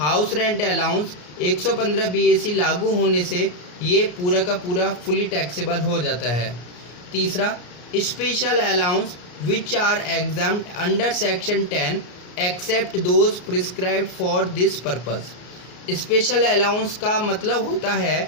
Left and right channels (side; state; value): right; late; 34 ms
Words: रेंट अलाउंस 115 BAC लागू होने से ये पूरा का पूरा फुली टैक्सेबल हो जाता है। तीसरा special allowance which are examined under section 10 except those prescribed for this purpose. Special allowance का मतलब होता